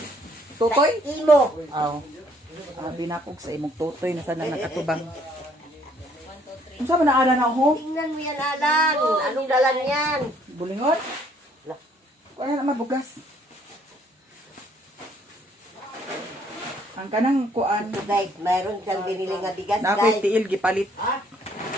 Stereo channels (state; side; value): normal; both; correlation 0.64